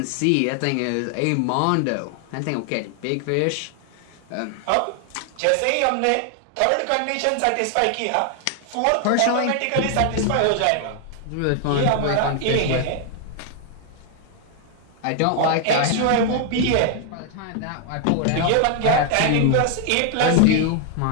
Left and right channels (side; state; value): both; different; correlation 0.00